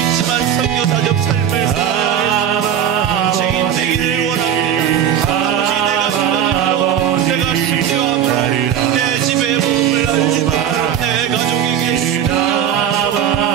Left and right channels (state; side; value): quieter; left; 9.5 dB